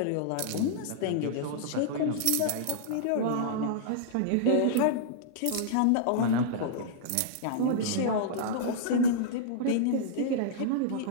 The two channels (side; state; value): both; different; correlation -0.02